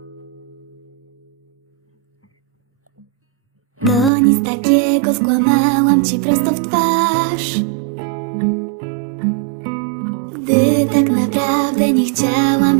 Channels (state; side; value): drops out; left; at 4.1 s